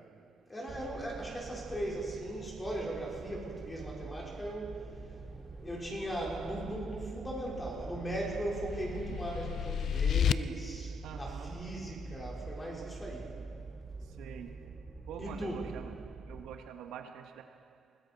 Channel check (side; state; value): both; normal; correlation 0.74